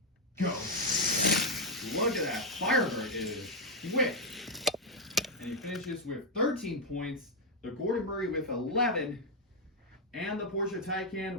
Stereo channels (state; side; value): normal; both; correlation 0.01